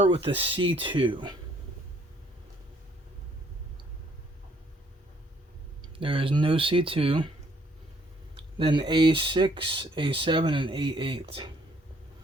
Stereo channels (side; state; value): both; normal; correlation 0.65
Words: with the C2. There is no C2. Then A6, A7, and A8.